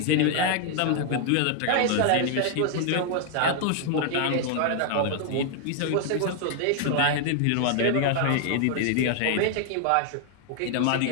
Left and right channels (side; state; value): both; different; correlation 0.00